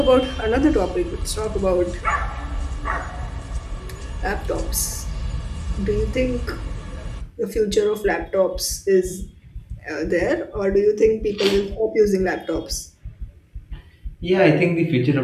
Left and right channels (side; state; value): both; identical; correlation 1.00